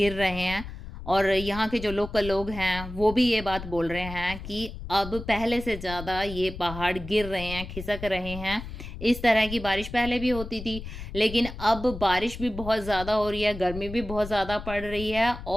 रहे हैं। और यहाँ के जो लोकल लोग हैं वो भी ये बात बोल रहे हैं कि अब पहले से ज़्यादा ये पहाड़ गिर रहे हैं, खिसक रहे हैं। इस तरह की बारिश पहले भी होती थी, लेकिन अब बारिश भी बहुत ज़्यादा हो रही है, गर्मी भी बहुत ज़्यादा पड़ रही है।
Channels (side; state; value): left; noise; rumble, 10 dB below the sound